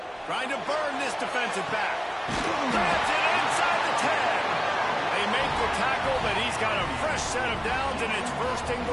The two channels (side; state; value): both; identical; correlation 1.00